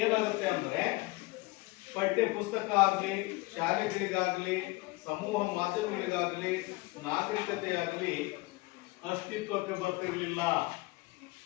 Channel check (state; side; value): quieter; right; 22.6 dB